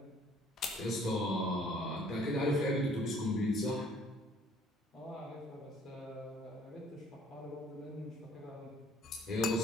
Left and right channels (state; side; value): normal; both; correlation 0.58